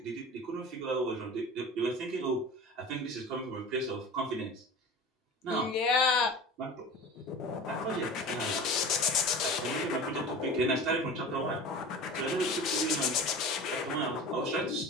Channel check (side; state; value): both; normal; correlation 0.36